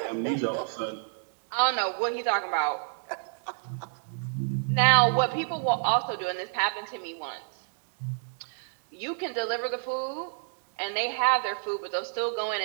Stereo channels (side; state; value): left; silent; 59 dB below the other